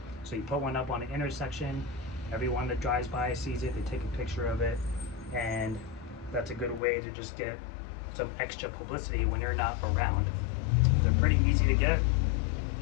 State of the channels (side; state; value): right; drops out; at 6.8 s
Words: So you put one up on an intersection, everyone that drives by sees it, they take a picture of it, and that's a good way to just get some extra publicity when you're not around. They're pretty easy to get.